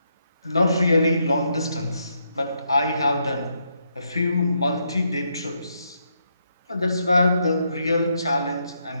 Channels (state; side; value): inverted; both; correlation -0.79